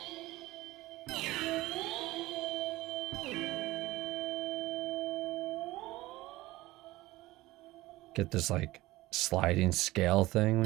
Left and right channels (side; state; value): left; quieter; 18.4 dB